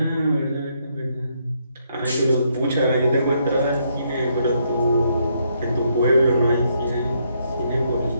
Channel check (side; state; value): both; inverted; correlation -0.74